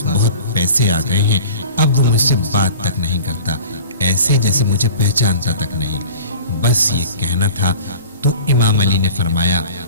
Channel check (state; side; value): inverted; both; correlation -0.42